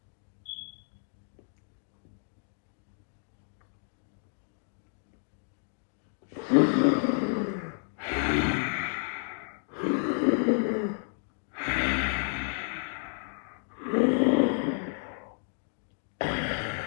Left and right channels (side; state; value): right; silent; 57 dB below the other